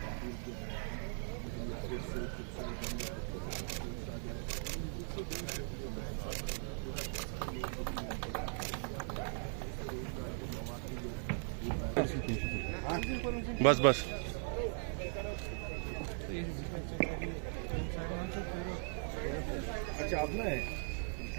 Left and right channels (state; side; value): silent; left; 52 dB below the other